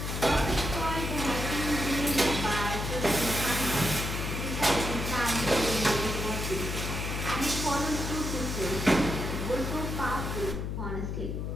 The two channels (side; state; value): left; noise; hum, 3 dB below the sound